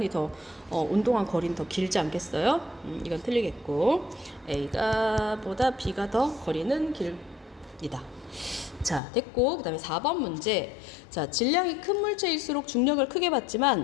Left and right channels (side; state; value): right; drops out; at 9.0 s